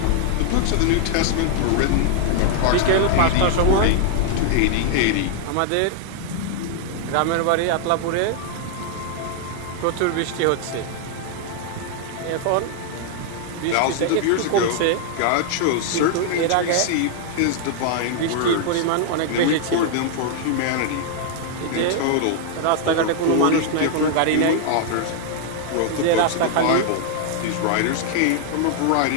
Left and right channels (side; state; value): both; different; correlation 0.00